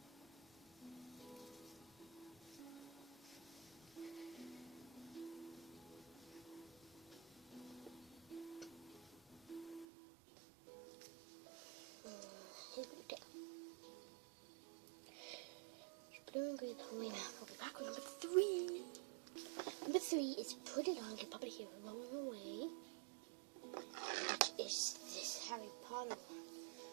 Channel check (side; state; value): left; drops out; at 9.9 s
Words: Here we go. Blue and green the whole way around. We'll be back with number 3. Number 3 is put it on, get Papa here rolling away. Which is this Harry Potter one.